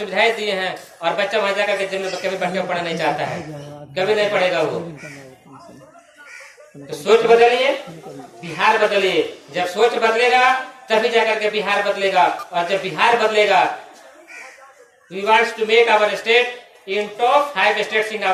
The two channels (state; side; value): identical; both; correlation 1.00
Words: दिए हैं, और बच्चा वहां जाकर के जिम में कभी बैठ के पढ़ना नहीं चाहता है, कभी नहीं पढ़ेगा वो। तो सोच बदलिए, बिहार बदलिए। जब सोच बदलेगा तभी जाकर के बिहार बदलेगा, और जब बिहार बदलेगा, we wants to make our state in top 5 states in